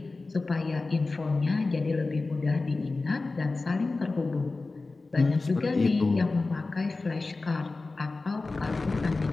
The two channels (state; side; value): quieter; right; 3.6 dB